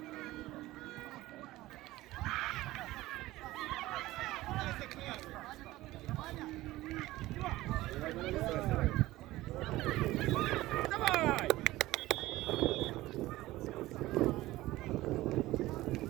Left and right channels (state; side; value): quieter; left; 17.4 dB